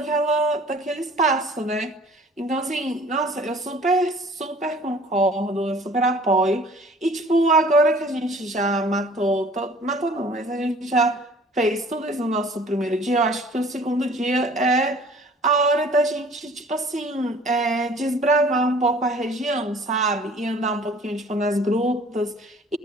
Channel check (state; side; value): normal; both; correlation 0.51